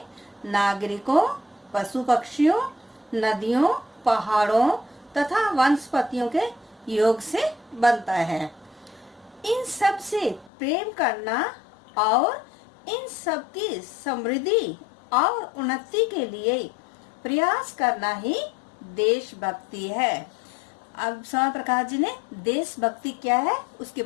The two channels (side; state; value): right; drops out; at 10.5 s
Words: नागरिकों, पशु पक्षियों, नदियों, पहाड़ों तथा वनस्पतियों के योग से बनता है। इन सब से प्रेम करना और इन सब की समृद्धि और उन्नति के लिए प्रयास करना ही देशभक्ति है। अब स्वयं प्रकाश जी ने देशभक्ति क्या है उसके